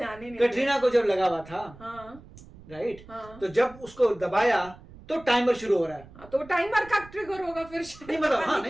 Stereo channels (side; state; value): right; noise; rumble, 20 dB below the sound